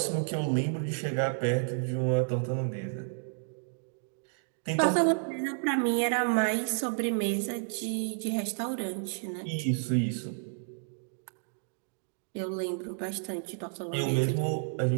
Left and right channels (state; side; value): silent; left; digital silence